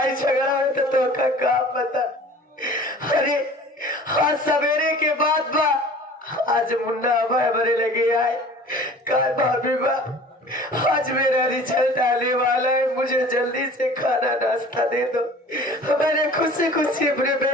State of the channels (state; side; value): normal; both; correlation 0.45